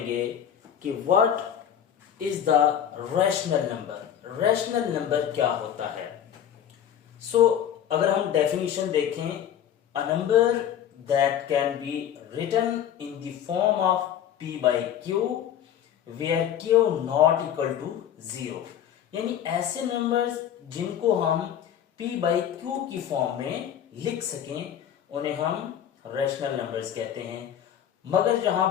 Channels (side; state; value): right; quieter; 9.7 dB